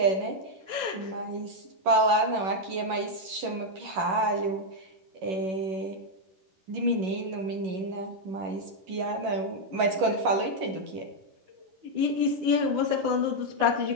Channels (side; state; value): left; late; 11 ms